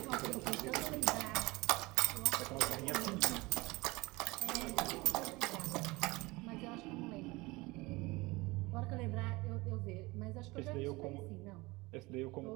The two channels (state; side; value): quieter; left; 22.5 dB